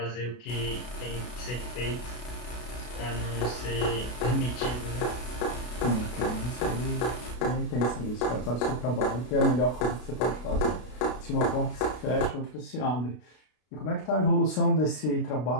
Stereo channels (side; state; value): right; late; 33 ms